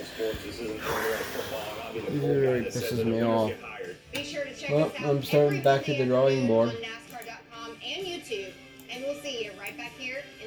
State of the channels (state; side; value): identical; both; correlation 1.00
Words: sports. This isn't football. I mean, Pisses me off. Be sure to check Well, us out I'm starting every back to the drawing board on NASCAR.com and YouTube, and we'll see you right back here